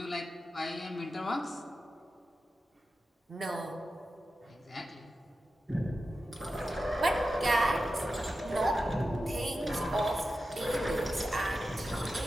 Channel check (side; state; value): both; normal; correlation 0.92